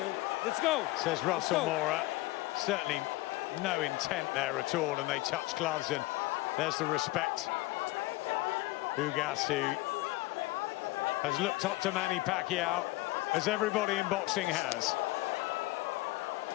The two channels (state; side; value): quieter; right; 20.1 dB